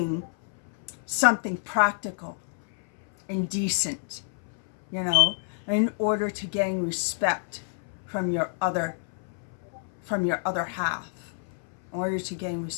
something practical and decent, you know, in order to gain respect from your other half. In order to gain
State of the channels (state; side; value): silent; right; 59 dB below the other